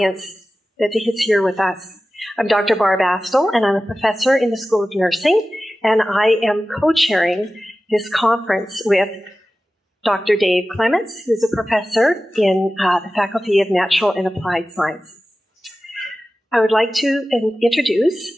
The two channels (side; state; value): both; normal; correlation 0.95